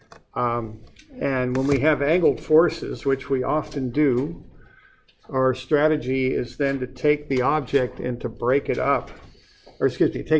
And when we have angled forces, which we often do, our strategy is then to take the object and to break it up. Or excuse me,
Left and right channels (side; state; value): both; identical; correlation 1.00